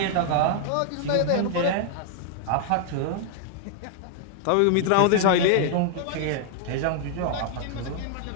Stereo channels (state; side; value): different; both; correlation 0.00